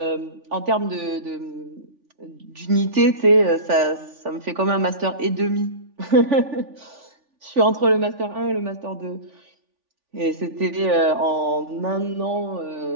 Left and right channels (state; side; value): late; left; 3.5 ms